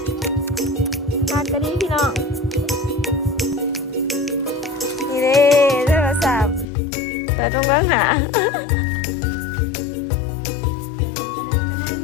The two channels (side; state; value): right; drops out; at 6.7 s